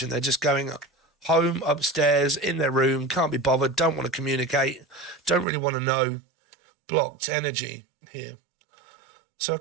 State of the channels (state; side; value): drops out; left; at 5.5 s